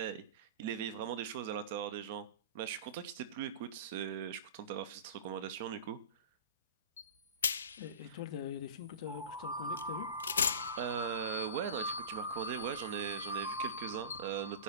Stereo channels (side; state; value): both; inverted; correlation -0.31